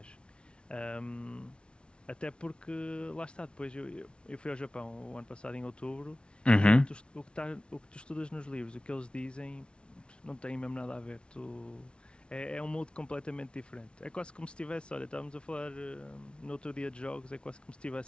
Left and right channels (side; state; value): right; late; 0.057 ms